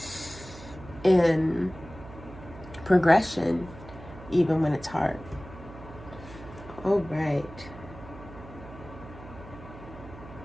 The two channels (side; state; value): right; noise; hum, 16 dB below the sound